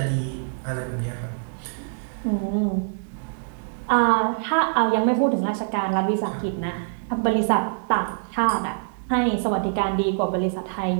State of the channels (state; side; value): silent; left; digital silence